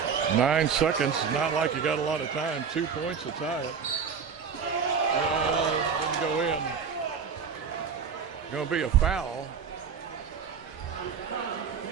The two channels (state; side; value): quieter; left; 6.3 dB